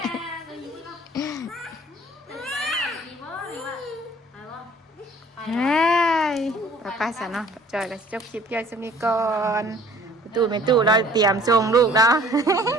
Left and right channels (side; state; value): both; normal; correlation 0.53